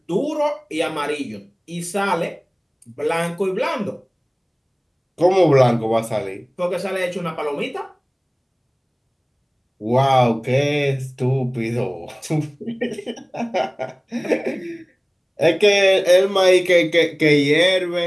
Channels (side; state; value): both; identical; correlation 1.00